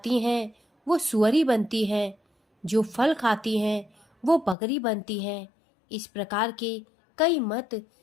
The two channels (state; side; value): drops out; right; at 4.5 s